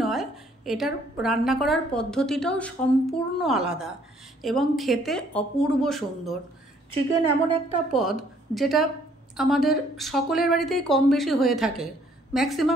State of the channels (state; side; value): normal; both; correlation 0.63